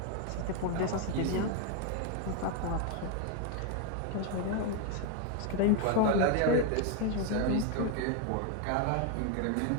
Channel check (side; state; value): both; different; correlation 0.01